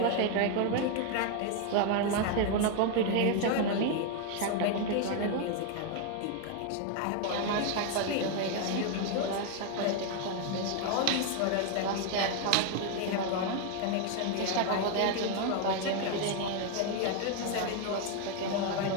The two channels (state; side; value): different; both; correlation 0.01